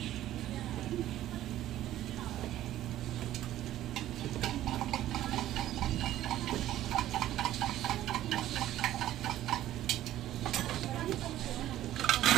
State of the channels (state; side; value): quieter; left; 13.5 dB